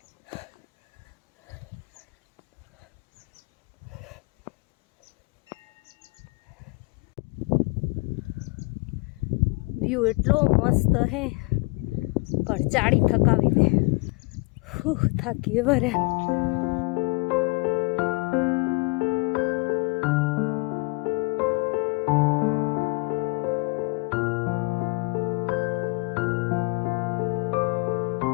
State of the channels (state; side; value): quieter; right; 28.6 dB